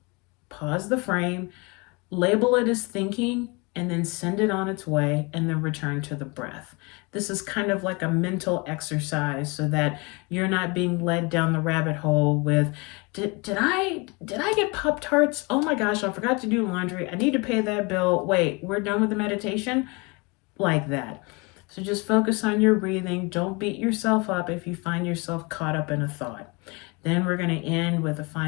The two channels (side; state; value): right; quieter; 28.4 dB